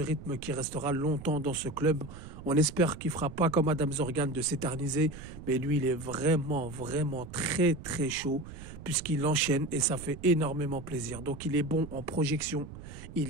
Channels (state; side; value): noise; right; rumble, 13 dB below the sound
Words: qui restera longtemps dans ce club. On espère qu'il fera pas comme Adam Zorgan de s'éterniser, mais lui, il est vraiment très très chaud puisqu'il enchaîne et ça fait énormément plaisir. Donc il est bon en projection,